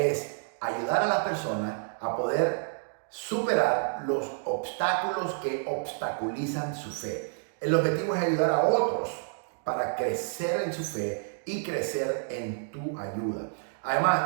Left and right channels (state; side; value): silent; left; digital silence